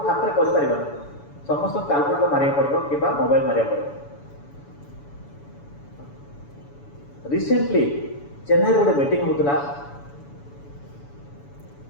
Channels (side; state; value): right; late; 7.0 ms